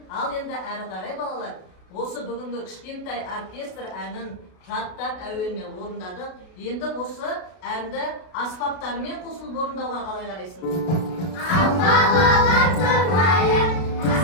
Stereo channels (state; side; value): late; right; 32 ms